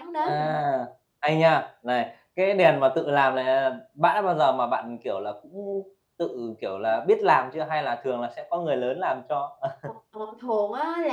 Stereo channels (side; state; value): both; identical; correlation 1.00